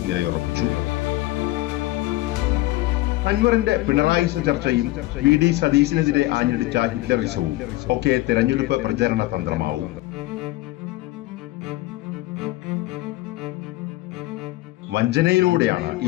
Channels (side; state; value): right; quieter; 18.4 dB